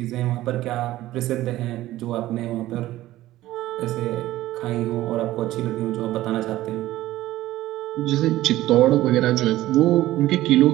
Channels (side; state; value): left; quieter; 15.6 dB